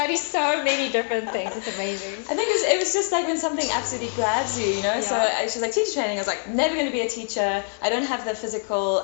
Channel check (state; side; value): silent; right; digital silence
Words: so many different things. It's amazing. I think it was just like when something absolutely grabs you, So she was like, teacher training. I was like, never going to be a teacher. I don't have the physical.